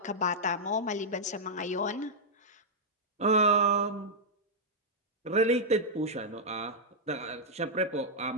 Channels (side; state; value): both; normal; correlation -0.06